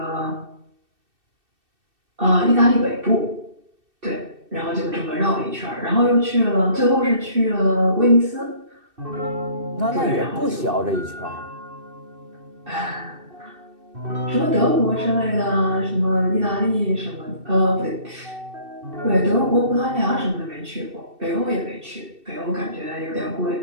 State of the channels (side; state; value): left; late; 2.6 ms